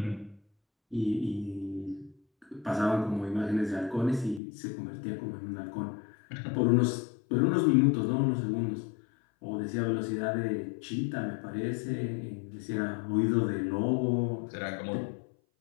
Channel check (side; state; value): right; drops out; at 4.4 s